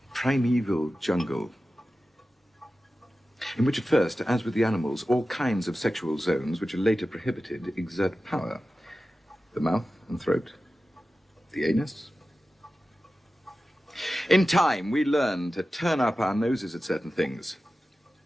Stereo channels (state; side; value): normal; both; correlation 0.94